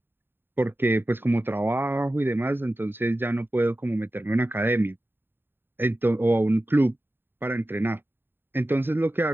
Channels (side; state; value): left; late; 0.10 ms